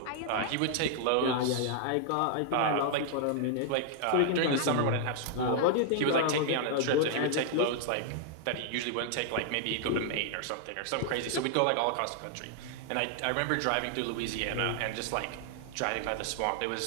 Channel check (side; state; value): both; different; correlation 0.00